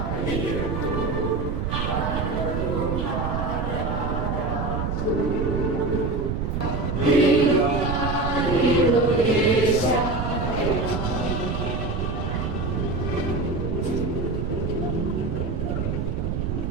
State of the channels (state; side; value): noise; right; rumble, 1 dB below the sound